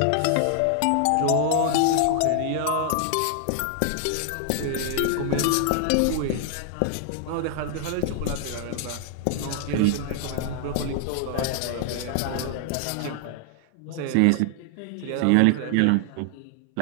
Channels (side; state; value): both; different; correlation 0.00